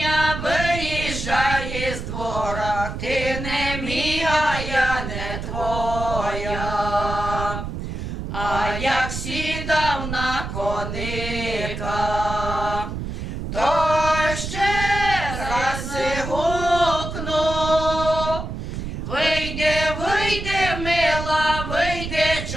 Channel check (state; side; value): noise; right; rumble, 6 dB below the sound